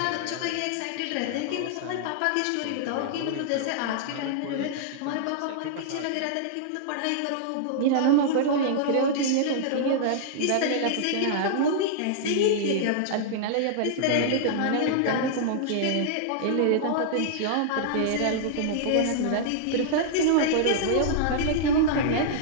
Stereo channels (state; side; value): different; both; correlation -0.02